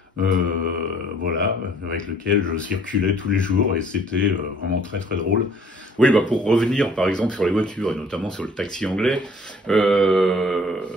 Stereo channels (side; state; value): both; normal; correlation 0.57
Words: Voilà, avec lequel je circulais tous les jours et c'était vraiment très drôle. Oui, pour revenir par exemple sur les voitures et notamment sur le taxi anglais,